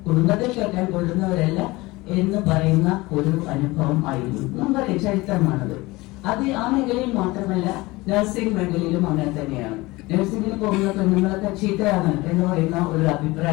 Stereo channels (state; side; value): quieter; right; 21.4 dB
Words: കുടുംബത്തിൽ കേട്ടാൻ കൊള്ളുന്നവരല്ല എന്ന് പറയുന്ന ഒരു അനുഭവം ആയിരുന്നു. നമുക്കറിയാം, ചരിത്രമാണത്. അത് ആ മേഖലയിൽ മാത്രമല്ല, നഴ്സിംഗ് മേഖലയിലും അങ്ങനെ തന്നെയാണ്. നഴ്സിംഗിന് പോകുന്ന പെണ്ണുങ്ങളൊക്കെ ചീത്തയാണ് എന്ന് പറയുന്ന ഒരു